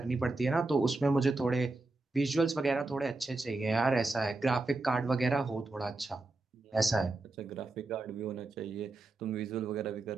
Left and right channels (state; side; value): quieter; left; 3.2 dB